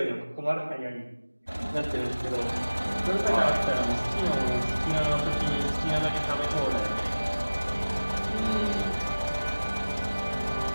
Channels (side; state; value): both; inverted; correlation -1.00